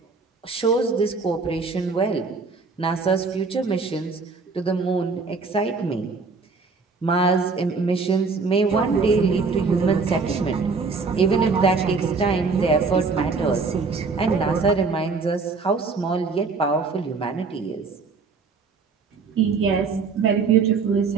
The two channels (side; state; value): left; quieter; 4.5 dB